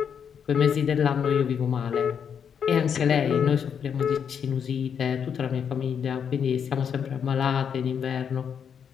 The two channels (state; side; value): quieter; right; 7.5 dB